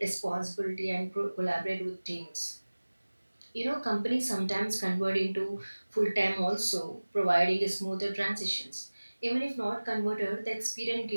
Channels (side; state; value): both; inverted; correlation -1.00